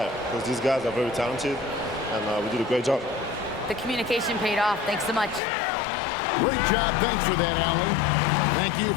because these guys are very talented and we did a great job. The communication paid off. Thanks so much. Great job. Thanks for that, Allie. Thank you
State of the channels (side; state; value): right; drops out; at 5.4 s